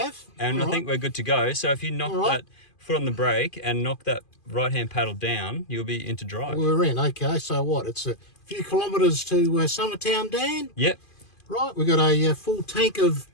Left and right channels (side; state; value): right; late; 2.5 ms